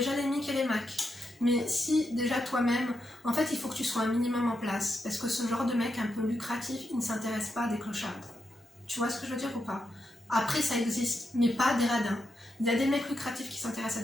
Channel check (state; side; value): normal; both; correlation 0.85